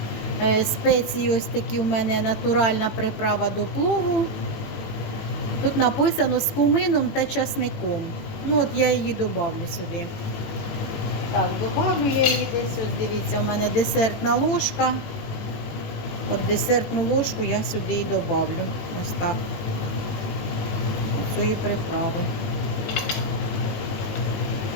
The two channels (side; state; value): right; late; 18 ms